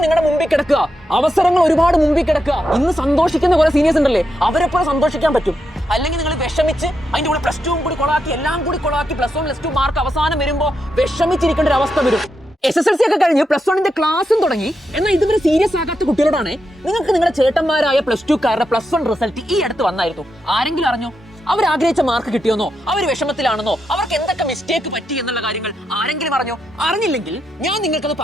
നിങ്ങളുടെ മുമ്പിൽ കിടക്കുക. അവസരങ്ങൾ ഒരുപാട് മുമ്പിൽ കിടക്കുക. ഇന്ന് സന്തോഷിക്കുന്ന കുറെ സീനിയേഴ്സ് ഉണ്ടല്ലേ, അവരെപ്പോലെ സന്തോഷിക്കാൻ പറ്റും. അല്ലെങ്കിൽ നിങ്ങൾ വിഷമിച്ച് അതിന്റെ കൂടെ പ്ലസ് 2 കൂടി കൊളാക്കി, എല്ലാം കൂടി കൊളാക്കി, പ്ലസ് 1 പ്ലസ് 2 മാർക്ക് അവസാനം വരുമ്പോൾ വിഷമിച്ചിരിക്കേണ്ട ഒരു അവസ്ഥ വരും. SSLC ഒക്കെ കഴിഞ്ഞ് പ്ലസ് 1ന്റെ ക്ലാസ്സും തുടങ്ങി. എന്നാൽ ഇതുവരെ സീരിയസ് ആകാത്ത കുട്ടികളോടാണ് നിങ്ങൾക്ക് നിങ്ങളുടെ ചേട്ടന്മാരായ പ്ലസ് 2കാരുടെ പ്ലസ് 1 റിസൾട്ട് ഈ അടുത്ത് വന്നായിരുന്നു. ആരെങ്കിലും അറിഞ്ഞോ? അവർ ആഗ്രഹിച്ച മാർക്ക് കിട്ടിയോന്നോ, അവർ വിഷമത്തിലാണെന്നോ, അവർക്ക് എന്തൊക്കെ മിസ്റ്റേക്ക് പറ്റി എന്നുള്ള കാര്യങ്ങൾ ആരെങ്കിലും അറിഞ്ഞോ? അറിഞ്ഞില്ലെങ്കിൽ ഞാൻ നിങ്ങൾക്കത്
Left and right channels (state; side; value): normal; both; correlation 0.84